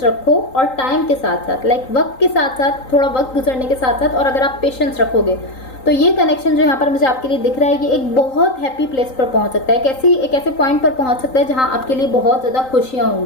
रखो और टाइम के साथ साथ, लाइक वक्त के साथ साथ, थोड़ा वक्त गुजरने के साथ साथ, और अगर आप पेशेंस रखोगे तो ये कनेक्शन जो यहाँ पर मुझे आपके लिए दिख रहा है, ये एक बहुत हैप्पी प्लेस पर पहुंच सकता है। एक ऐसे पॉइंट पर पहुंच सकता है जहां आपके लिए बहुत ज्यादा खुशियां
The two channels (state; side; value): late; right; 3.8 ms